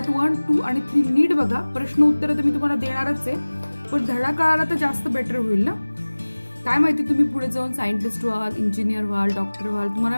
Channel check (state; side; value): inverted; both; correlation -1.00